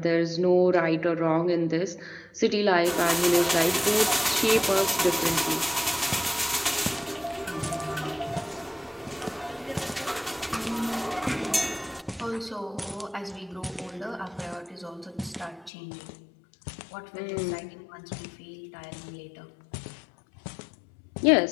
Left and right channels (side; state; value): right; drops out; at 15.7 s